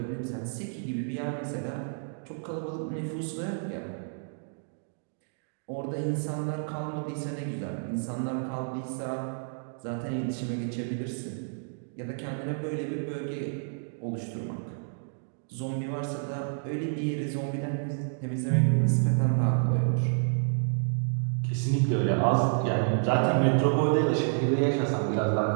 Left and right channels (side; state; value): left; silent; digital silence